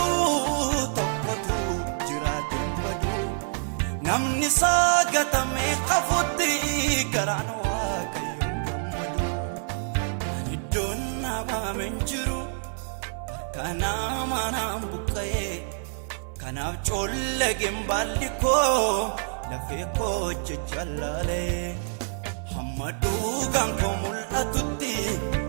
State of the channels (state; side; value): silent; left; digital silence